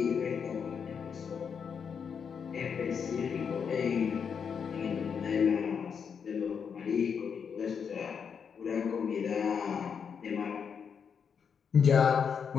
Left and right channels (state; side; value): quieter; right; 6.8 dB